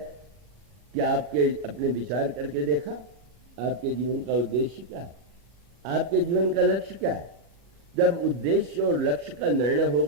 कि आपके अपने विचार करके देखा आपके जीवन का उद्देश्य क्या है, आपके जीवन का लक्ष्य क्या है? जब उद्देश्य और लक्ष्य का निर्णय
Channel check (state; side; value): late; left; 39 ms